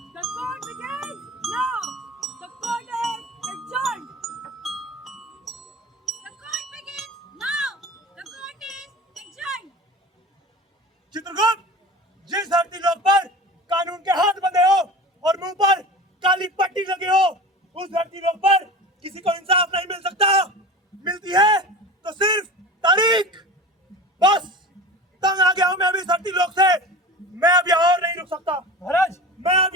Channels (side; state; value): both; normal; correlation 0.34